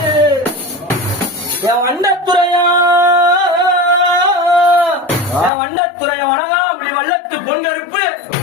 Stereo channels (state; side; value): drops out; right; at 5.5 s